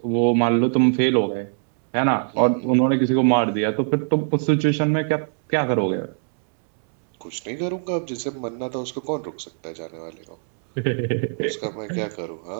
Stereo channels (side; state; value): left; silent; digital silence